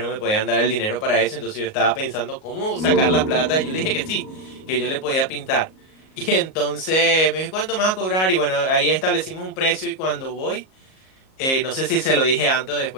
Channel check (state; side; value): late; right; 38 ms